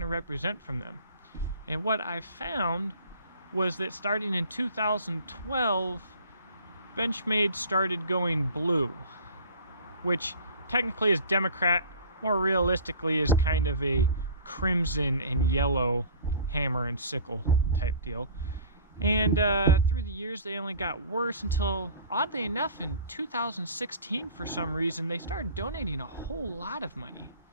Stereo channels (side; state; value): both; inverted; correlation -0.44